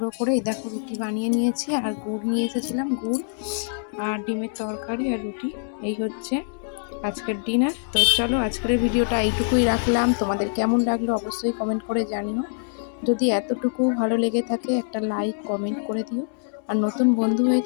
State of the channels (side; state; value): right; silent; digital silence